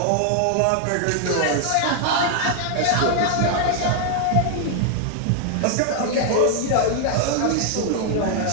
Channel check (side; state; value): both; different; correlation 0.00